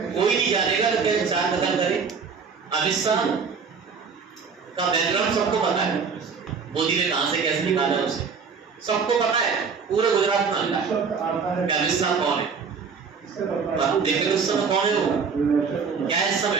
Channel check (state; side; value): quieter; left; 5.6 dB